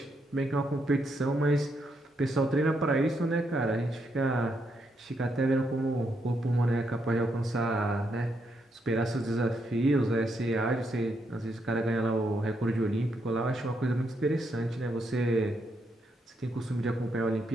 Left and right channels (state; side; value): normal; both; correlation 0.78